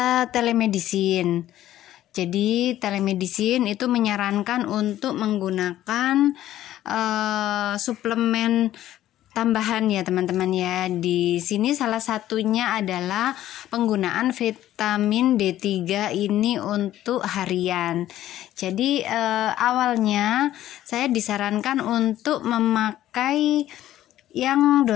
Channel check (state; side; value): quieter; right; 13.2 dB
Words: telemedicine. Jadi telemedicine itu menyarankan untuk menggunakan suplemen tambahan ya teman-teman ya. Di sini salah satunya adalah penggunaan vitamin D3 ini untuk harian. Jadi awalnya saya disarankan untuk memakai yang